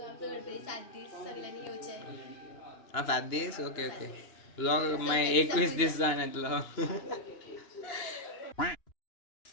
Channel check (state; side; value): late; right; 2.9 ms